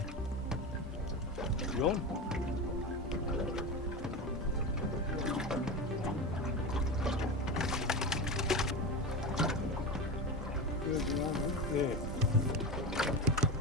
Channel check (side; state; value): both; normal; correlation 0.22